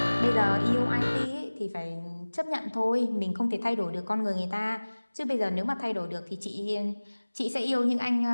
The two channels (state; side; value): inverted; both; correlation -1.00